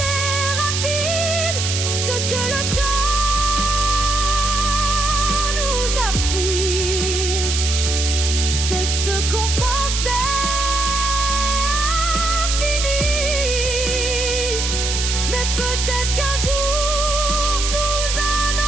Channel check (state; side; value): noise; right; hiss, 2 dB below the sound